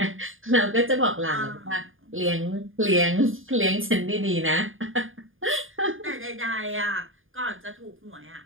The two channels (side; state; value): left; late; 0.59 ms